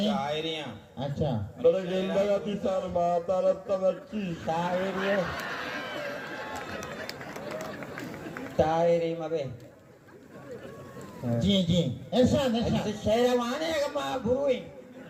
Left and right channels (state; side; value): identical; both; correlation 1.00